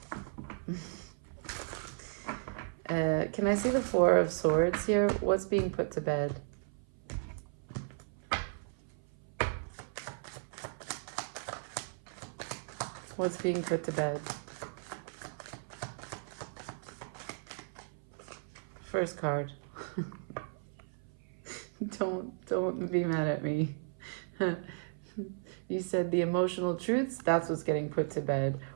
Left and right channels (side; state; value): left; silent; 54 dB below the other